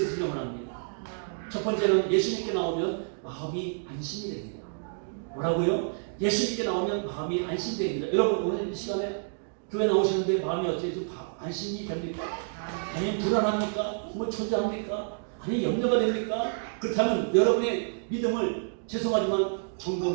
원합니다. 첫 번째는 예수님께 나오면 마음이 안심이 됩니다. 뭐라고요? 예수님께 나오면 마음이 안심이 됩니다. 여러분 오늘 이 시간에 교회 나오셨는데 마음이 어떻게 좀 안심이 됩니까? 아니면 불안합니까? 뭐 초조합니까? 아니 염려가 됩니까? 그렇다면 여러분의 믿음을 죄송하지만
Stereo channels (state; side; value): silent; left; digital silence